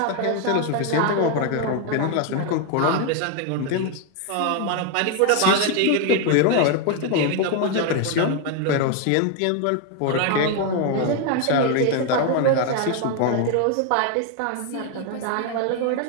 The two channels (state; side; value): different; both; correlation 0.01